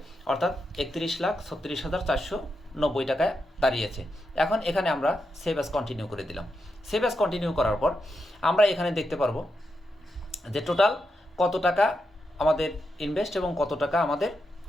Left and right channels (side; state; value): both; normal; correlation 0.85